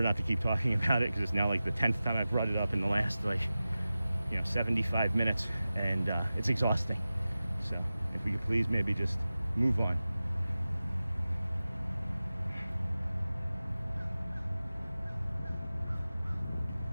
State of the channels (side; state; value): both; inverted; correlation -0.95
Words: not to keep talking about it because it's now like the 10th time I've brought it up in the last 75 minutes, and it's exhausting. So if we could please maybe just move on.